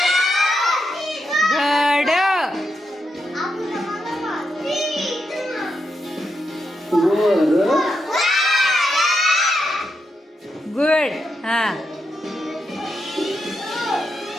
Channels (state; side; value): normal; both; correlation 0.84